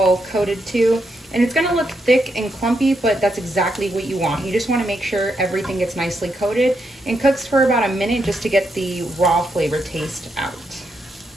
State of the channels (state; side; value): normal; both; correlation 0.81